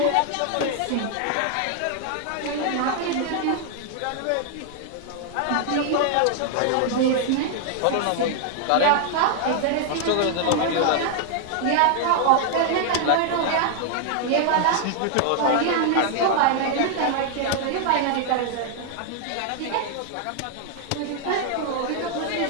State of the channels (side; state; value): both; different; correlation 0.00